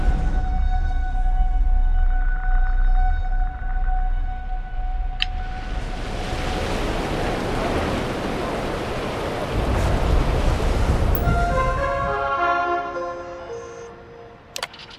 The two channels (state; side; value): identical; both; correlation 1.00